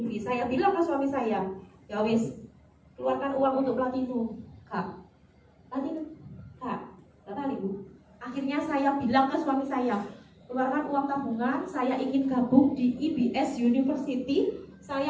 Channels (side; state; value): both; identical; correlation 1.00